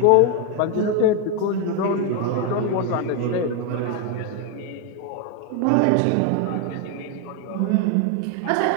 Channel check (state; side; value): different; both; correlation 0.01